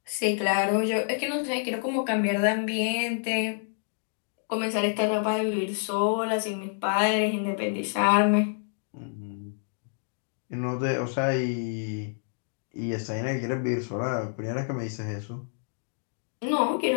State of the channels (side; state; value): right; silent; digital silence